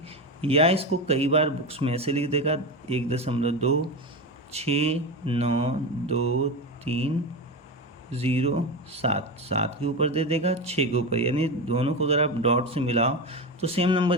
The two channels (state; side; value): normal; both; correlation 0.19